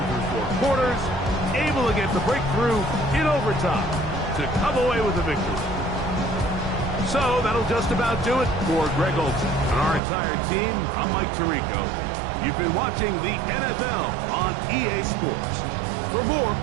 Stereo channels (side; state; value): left; drops out; at 10.0 s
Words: through 4 quarters, able to get the breakthrough in overtime to come away with the victory. So that'll just about do it for Greg Olsen and our entire team. I'm Mike Tirico. You've been watching the NFL on EA Sports. For more,